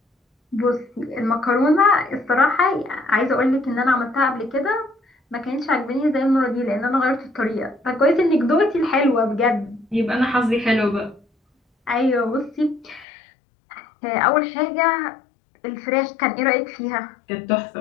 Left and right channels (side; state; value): right; drops out; at 13.1 s